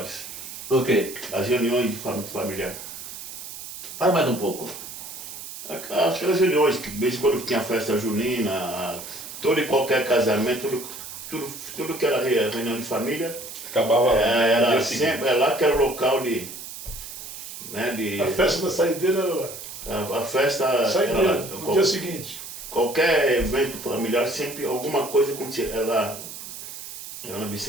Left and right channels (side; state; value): right; noise; hiss, 11 dB below the sound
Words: O quê? As reuniões de familiar. Fala mais um pouco. Aquelas reuniões que de vez em quando tinha festa junina, todo e qualquer casamento, tudo que era reunião de família, Acabava era dia seguinte. sempre, lá que era o local de. Né, A festa da saideira era lá. a festa era Saideira, lá. no dia seguinte. Qualquer evento familiar, sempre alguma coisa acontecia. Era na